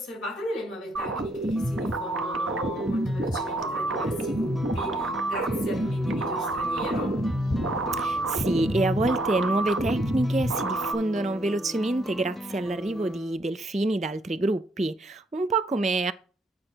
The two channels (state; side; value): normal; both; correlation 0.71